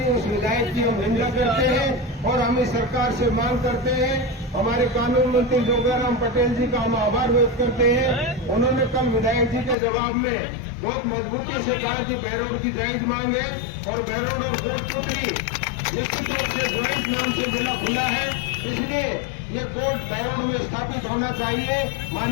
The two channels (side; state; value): right; drops out; at 9.8 s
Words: उस विधायक की हम निंदा करते हैं और हम इस सरकार से मांग करते हैं। हमारे कानून मंत्री जोगाराम पटेल जी का हम आभार व्यक्त करते हैं। उन्होंने कल विधायक जी के जवाब में बहुत मजबूती से कहा कि बहरोड की जायज मांग है और बहरोड और कोटपुतली निश्चित रूप से ज्वाइंट नाम से जिला खुला है, इसलिए ये कोर्ट बहरोड में स्थापित होना चाहिए।